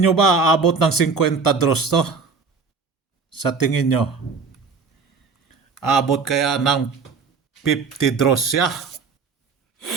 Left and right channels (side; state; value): left; quieter; 4.9 dB